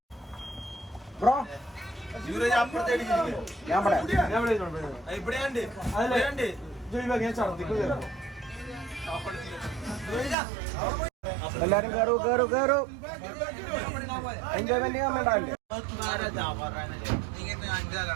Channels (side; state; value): left; drops out; at 10.4 s